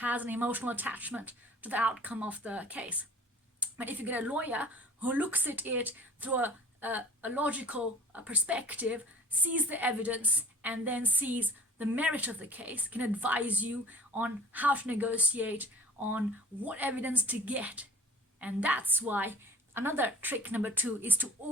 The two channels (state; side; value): normal; both; correlation 0.47